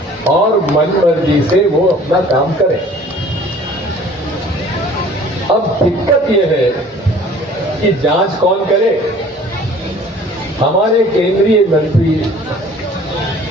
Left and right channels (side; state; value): both; normal; correlation 0.50